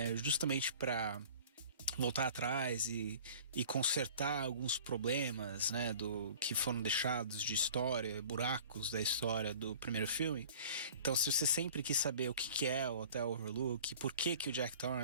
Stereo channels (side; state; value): both; inverted; correlation -0.46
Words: justamente para voltar atrás e consertar alguns problemas, né, do que foram deixados de história, buracos da história do primeiro filme. Então, se você sempre quis saber o que é o Hotel Overlook, por que o Jack